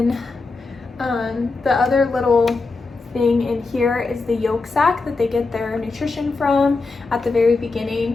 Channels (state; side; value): quieter; right; 3.8 dB